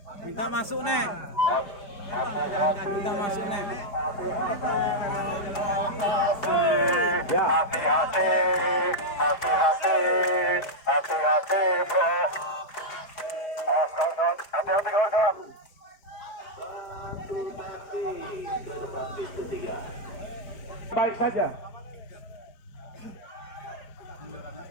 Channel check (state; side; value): late; right; 4.9 ms